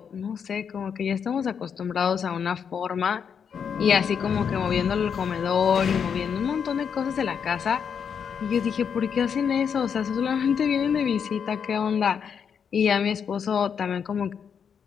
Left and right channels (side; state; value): right; quieter; 7.2 dB